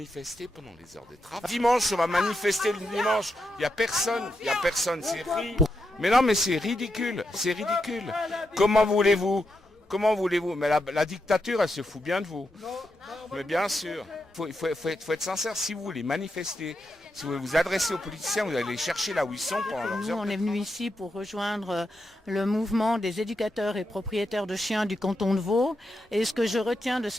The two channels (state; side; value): normal; both; correlation 0.85